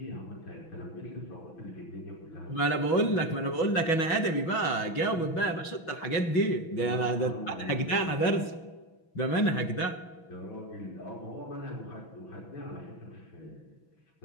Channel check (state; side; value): late; right; 6.1 ms